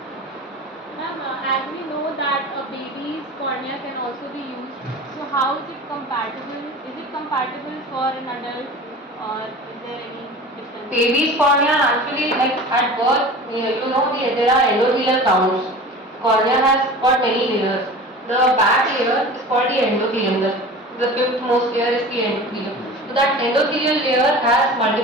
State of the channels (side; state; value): both; normal; correlation 0.37